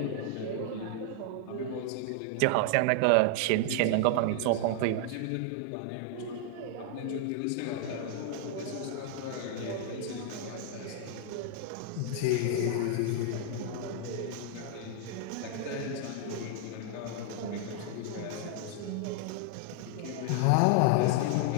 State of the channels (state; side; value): different; both; correlation 0.00